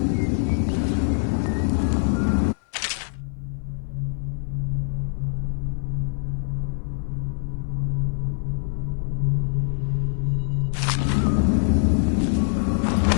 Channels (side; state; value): right; silent; 57 dB below the other